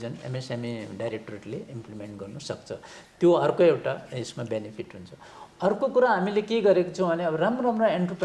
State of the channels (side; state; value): both; identical; correlation 1.00